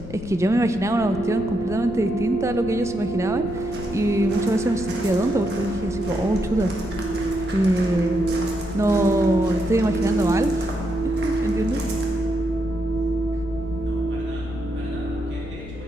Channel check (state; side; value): noise; left; rumble, 12 dB below the sound